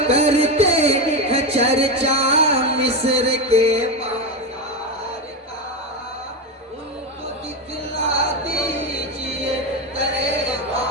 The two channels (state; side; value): normal; both; correlation 0.14